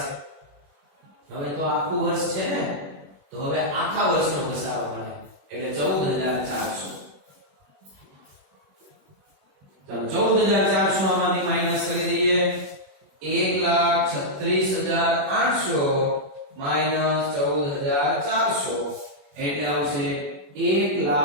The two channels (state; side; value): late; left; 21 ms